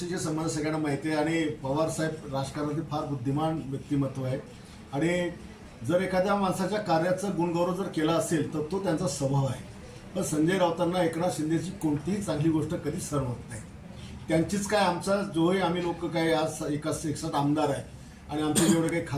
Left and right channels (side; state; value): both; identical; correlation 1.00